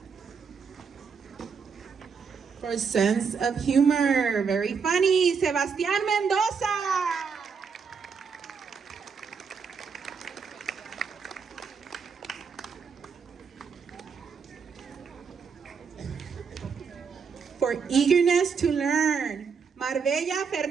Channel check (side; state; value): left; quieter; 5.9 dB